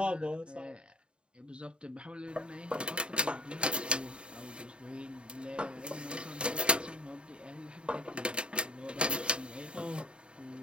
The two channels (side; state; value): left; late; 0.053 ms